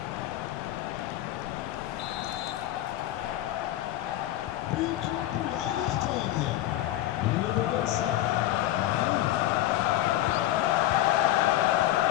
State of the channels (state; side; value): quieter; right; 14.2 dB